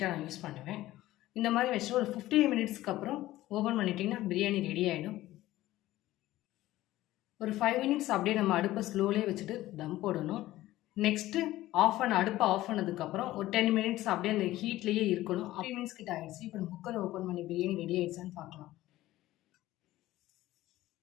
நான் யூஸ் பண்ணுவேன். இந்த மாதிரி வச்சு ஒரு 15 மினிட்ஸ்க்கு அப்புறம் ஓப்பன் பண்ணிட்டிங்கன்னா பிரியாணி ரெடி ஆகிடும். ஒரு 5 மினிட்ஸ் அப்படியே நம்ம அடுப்பை ஸ்லோலே வச்சுட்டு தம் போடணும். நெக்ஸ்ட்டு அடுப்பை ஆஃப் பண்ணதுக்கப்புறம் ஒரு 10 மினிட்ஸ் அப்படியே அந்த ஹீட்லேயே இருக்கணும். 3 மினிட்ஸ் கிட்ட ஆகிடுச்சு. இப்போ நம்ம குக்கரை ஓப்பன் பண்ணி பிரியாணி ரெடி ஆகிடுச்சான்னு பார்க்கலாம்.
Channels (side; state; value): right; quieter; 15.9 dB